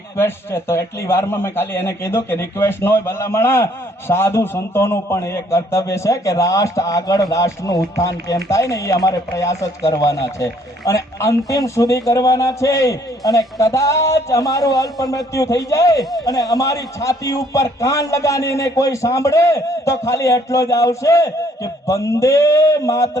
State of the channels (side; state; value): both; normal; correlation 0.63